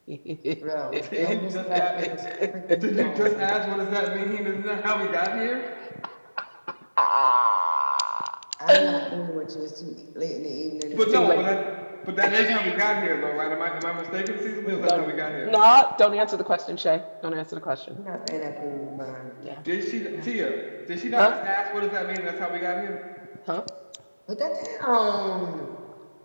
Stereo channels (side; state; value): both; inverted; correlation -1.00